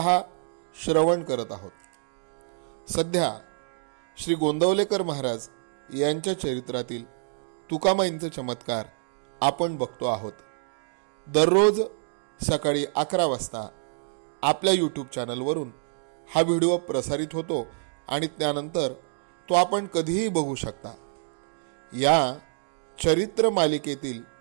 श्रवण करत आहोत. सध्या श्री गोंदवलेकर महाराज यांच्या चरित्रातील तुकामाईंचे चमत्कार आपण बघतो आहोत. दररोज सकाळी 11 वाजता आपल्या यूट्यूब चॅनलवरून हा व्हिडिओ प्रसारित होतो आणि त्यानंतर तो आपण कधीही बघू शकता. या चरित्र मालिकेतील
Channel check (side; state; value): left; silent; digital silence